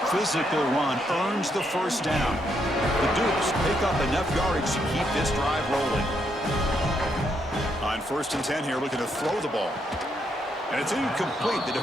Physical run earns the first down. The Dukes pick up enough yardage to keep this drive rolling. On 1st and 10 here, looking to throw the ball. And it's incomplete. The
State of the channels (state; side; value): normal; both; correlation 0.77